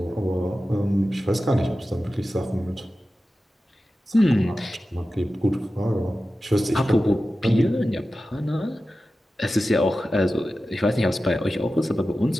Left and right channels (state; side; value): normal; both; correlation 0.94